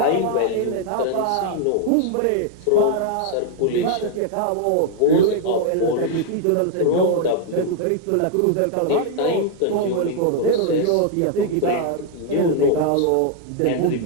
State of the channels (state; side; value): different; both; correlation 0.00